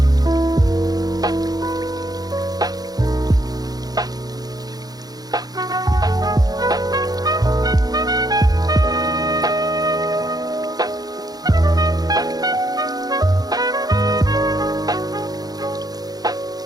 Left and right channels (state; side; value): late; left; 0.19 ms